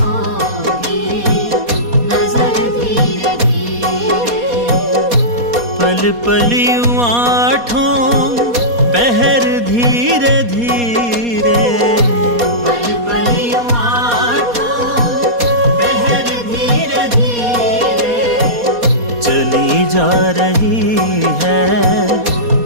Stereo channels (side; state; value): left; late; 4.2 ms